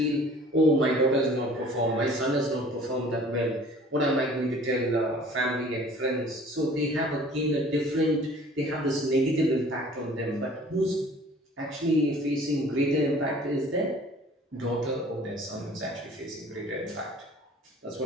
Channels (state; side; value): normal; both; correlation 0.50